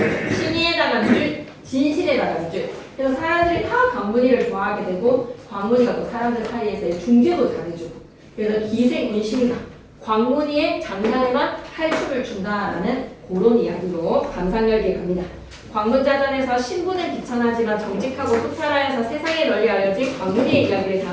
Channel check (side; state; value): both; identical; correlation 1.00